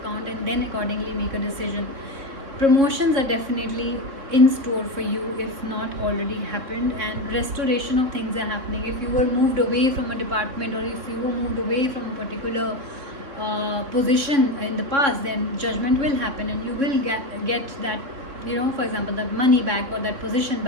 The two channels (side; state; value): left; late; 3.6 ms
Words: and then accordingly make a decision. Promotions are definitely in store for you, if not already happened, and restoration of things are happening. If you were moved away from a department, or if you were moved away from a particular position in the past, then judgment will happen and you will get that, you know, for example, that money back, or that position